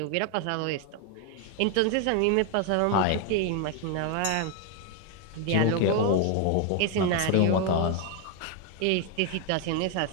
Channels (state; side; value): different; both; correlation 0.01